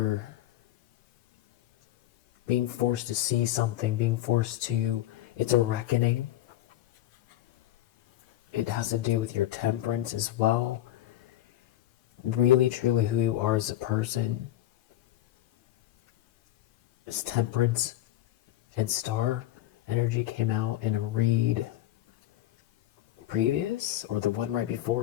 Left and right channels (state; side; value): quieter; right; 13.9 dB